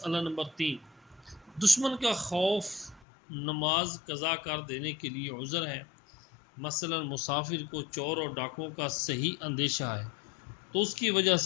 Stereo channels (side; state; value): right; drops out; at 3.0 s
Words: نمبر 3، دشمن کا خوف نماز قضا کر دینے کے لیے عذر ہے۔ مثلا مسافر کو چور اور ڈاکوؤں کا صحیح اندیشہ ہے تو اس کی وجہ